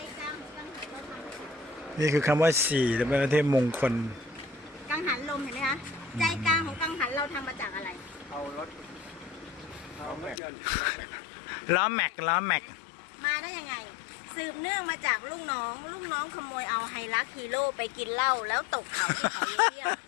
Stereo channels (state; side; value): drops out; right; at 10.4 s